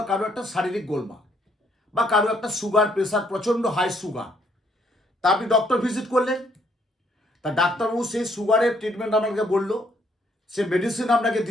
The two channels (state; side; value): normal; both; correlation 0.69